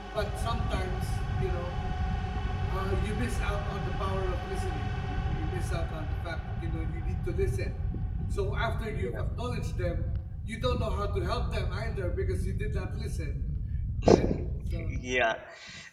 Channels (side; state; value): both; identical; correlation 1.00